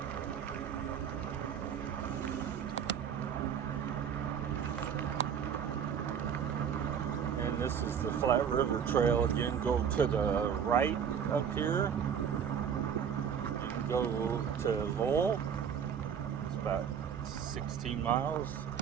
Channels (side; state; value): left; quieter; 7.8 dB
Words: And this is the Flat River Trail again. Go to the right up here. You can go to Lowell. It's about 16 miles.